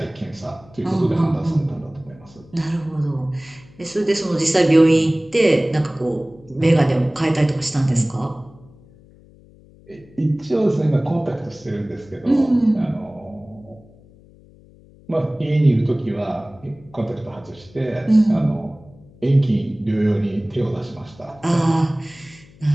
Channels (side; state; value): left; noise; hum, 25 dB below the sound